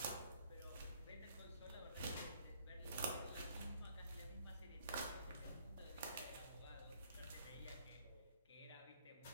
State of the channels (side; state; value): both; inverted; correlation -0.62